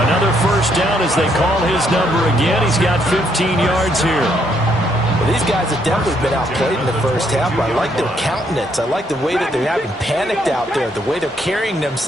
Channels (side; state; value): both; normal; correlation 0.72